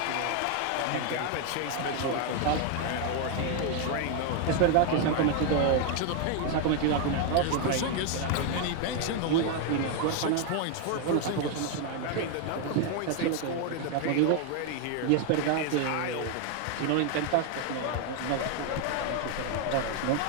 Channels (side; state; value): both; different; correlation 0.00